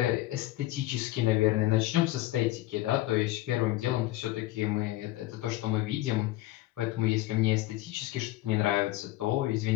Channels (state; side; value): quieter; right; 16.5 dB